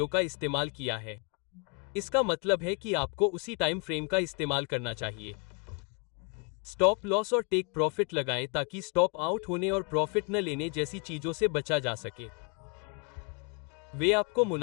का इस्तेमाल किया है। इसका मतलब है कि आपको उसी टाइम फ्रेम का इस्तेमाल करना चाहिए। स्टॉप लॉस और टेक प्रॉफिट लगाएं ताकि स्टॉप आउट होने और प्रॉफिट न लेने जैसी चीजों से बचा जा सके। वे आपको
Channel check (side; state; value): right; quieter; 33.9 dB